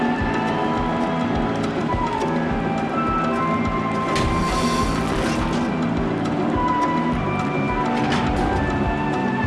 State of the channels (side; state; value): both; identical; correlation 1.00